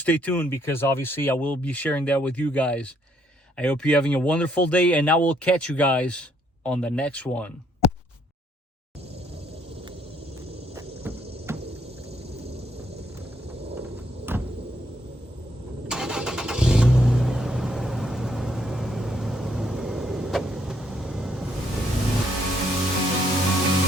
tuned, because obviously I will be sharing that with you guys. I hope you're having a wonderful day, and I will catch you guys on the next one.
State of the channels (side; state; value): both; normal; correlation 0.70